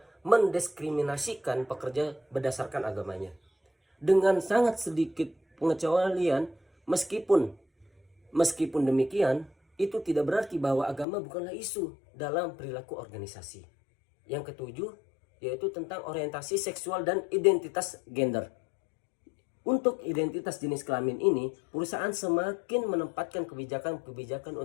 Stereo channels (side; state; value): right; drops out; at 11.1 s